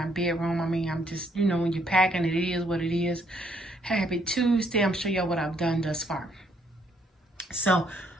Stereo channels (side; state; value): both; normal; correlation 0.69